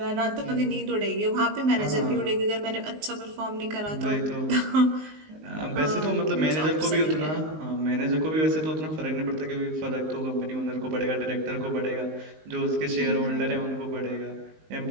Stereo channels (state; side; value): late; left; 19 ms